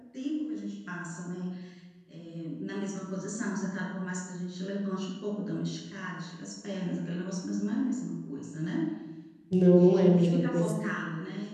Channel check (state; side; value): identical; both; correlation 1.00